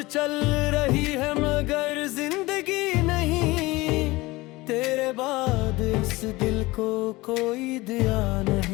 चल रही है मगर जिंदगी नहीं, तेरे बाद इस दिल को कोई दिया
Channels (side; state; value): right; quieter; 21.0 dB